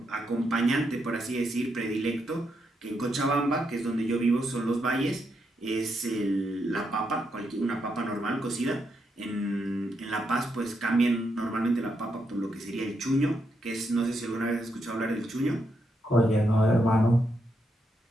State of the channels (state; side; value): normal; both; correlation 0.81